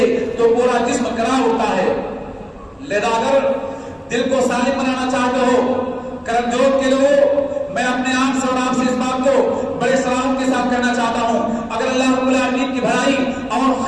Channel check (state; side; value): identical; both; correlation 1.00